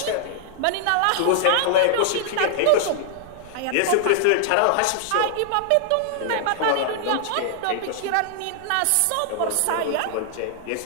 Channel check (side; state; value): both; different; correlation -0.01